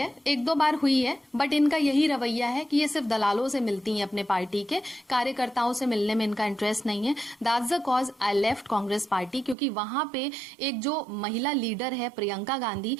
1-2 बार हुई है, बट इनका यही रवैया है कि ये सिर्फ दलालों से मिलती हैं, अपने पार्टी के कार्यकर्ताओं से मिलने में इनका इंटरेस्ट नहीं है। That's the cause I left Congress party, क्योंकि वहां पे एक जो महिला लीडर है प्रियंका गांधी,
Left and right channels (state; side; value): drops out; left; at 9.6 s